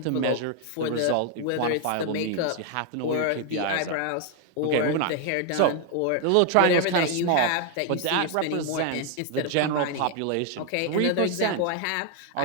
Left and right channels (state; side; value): different; both; correlation 0.00